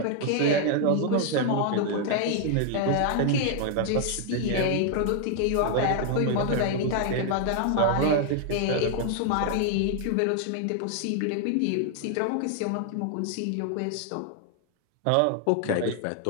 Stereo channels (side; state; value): both; different; correlation 0.00